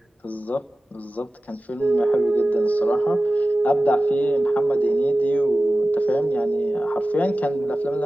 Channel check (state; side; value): normal; both; correlation 0.95